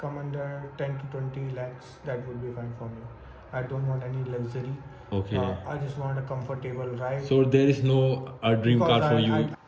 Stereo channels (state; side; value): identical; both; correlation 1.00